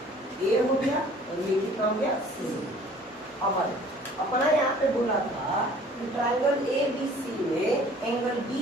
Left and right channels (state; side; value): normal; both; correlation 0.52